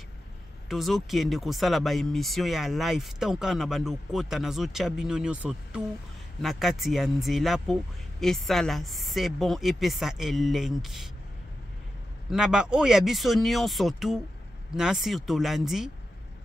Tozo kiende kosala ba émission ya live tanka na bando kota nazo chabino nyoso tout na kati ya nzela po esala c'est bon epesa elengi na ba oya biso nyonso tout na sur tolandi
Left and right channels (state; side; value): normal; both; correlation 0.90